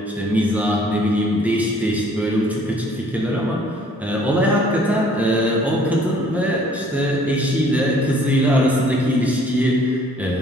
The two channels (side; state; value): both; normal; correlation 0.58